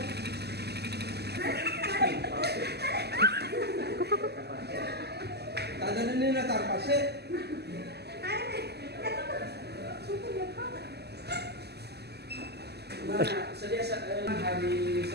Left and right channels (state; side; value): late; left; 0.47 ms